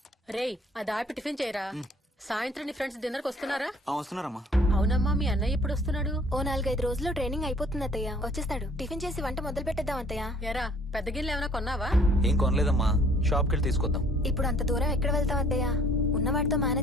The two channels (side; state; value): both; normal; correlation 0.57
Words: రేయ్, అది ఆపి టిఫిన్ చేయరా. సాయంత్రం నీ ఫ్రెండ్స్ డిన్నర్ కి వస్తున్నారా? వస్తున్నారమ్మా. అవునమ్మా, మీ అన్నయ్య ఎప్పుడు వస్తున్నాడు? ఓ 4-5 రోజుల్లో ట్రైనింగ్ అయిపోతుంది అత్తయ్య. వచ్చేస్తాడు. టిఫిన్ చేసి వంట మొదలు పెట్టేద్దాం అత్తయ్య. ఎరా, పెద్ద గిన్నెలు ఏమైనా కొన్నావా? ఏం కొనలేదమ్మా, షాప్ కెళ్ళి తీసుకొద్దాం. ఇప్పుడు అంత దూరం ఎక్కడ వెళ్తాం అత్తయ్య? ఉన్న వాటితో